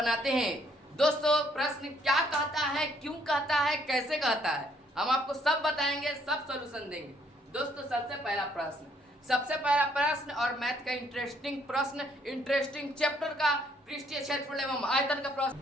हैं। दोस्तों प्रश्न क्या कहता है, क्यों कहता है, कैसे कहता है, हम आपको सब बताएंगे, सब सॉल्यूशन देंगे। दोस्तों सबसे पहला प्रश्न और मैथ का इंटरेस्टिंग प्रश्न, इंटरेस्टिंग चैप्टर का पृष्ठीय क्षेत्रफल एवं आयतन का प्रश्न।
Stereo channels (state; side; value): normal; both; correlation 0.67